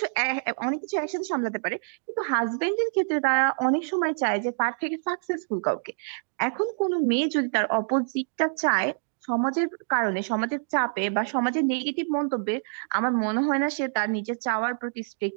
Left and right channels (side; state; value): left; silent; digital silence